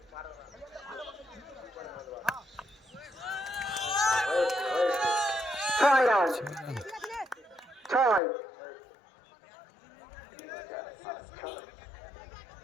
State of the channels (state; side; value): drops out; right; at 8.2 s